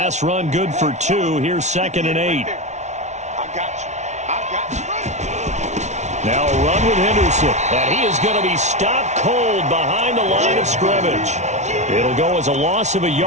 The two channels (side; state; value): left; late; 0.33 ms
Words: run good for 2. Here's 2nd and 8. Now a run with Henderson, and he is going to be stopped cold behind the line of scrimmage. It'll go as a loss of a